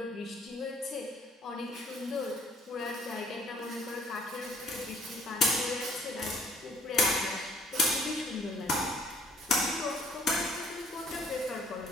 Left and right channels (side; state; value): both; normal; correlation 0.60